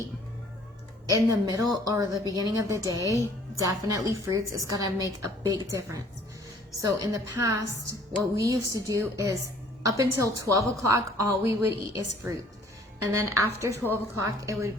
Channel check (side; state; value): both; normal; correlation 0.56